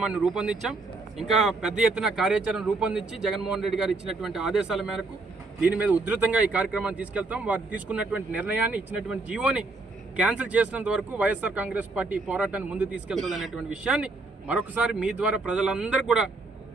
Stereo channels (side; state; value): left; quieter; 3.4 dB